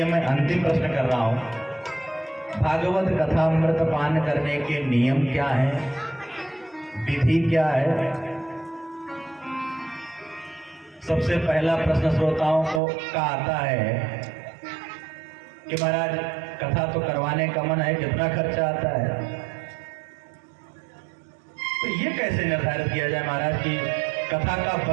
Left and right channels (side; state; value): left; drops out; at 12.8 s